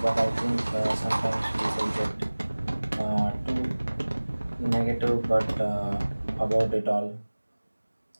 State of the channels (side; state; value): both; inverted; correlation -1.00